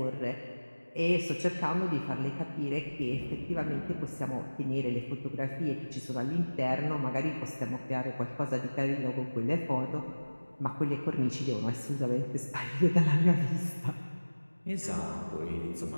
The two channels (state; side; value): inverted; both; correlation -1.00